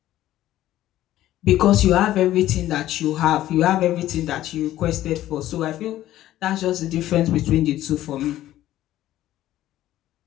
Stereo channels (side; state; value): right; quieter; 13.9 dB